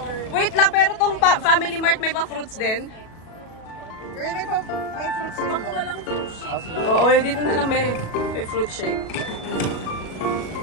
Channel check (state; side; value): late; right; 37 ms